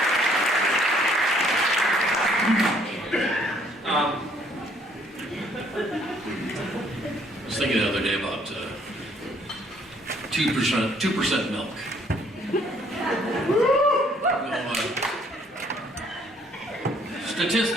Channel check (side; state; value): both; normal; correlation 0.64